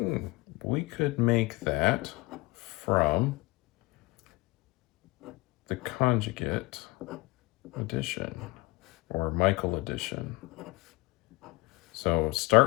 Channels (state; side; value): quieter; right; 23.1 dB